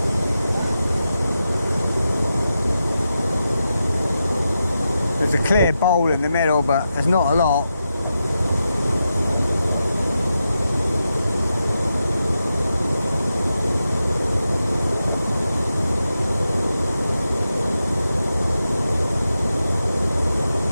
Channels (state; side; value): inverted; both; correlation -0.88